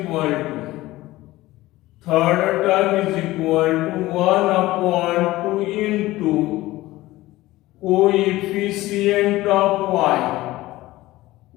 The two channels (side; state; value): right; quieter; 17.7 dB